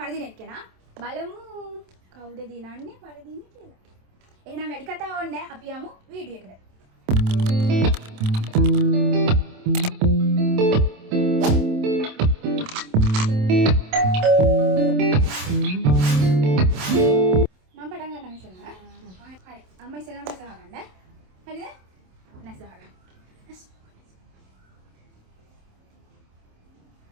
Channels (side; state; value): left; late; 27 ms